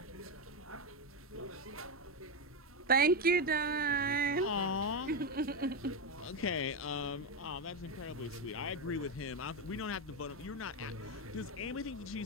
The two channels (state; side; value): normal; both; correlation 0.09